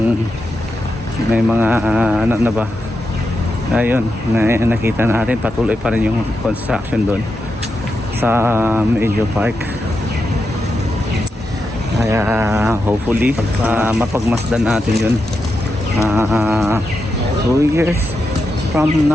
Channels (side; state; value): both; normal; correlation 0.87